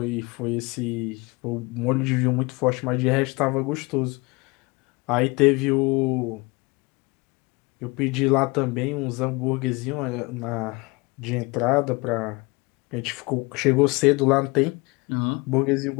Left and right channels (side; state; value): right; quieter; 25.7 dB